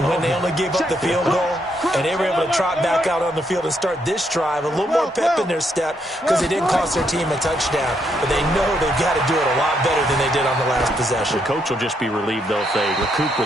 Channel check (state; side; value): normal; both; correlation 0.76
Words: they only gave up the field goal and they were able to trot back out on the field and start this drive? A little more pep in their step because they didn't cost their team a touchdown, but they know they've got to do it a lot better than they did on the last possession. The coach will just be relieved, though, if they recoup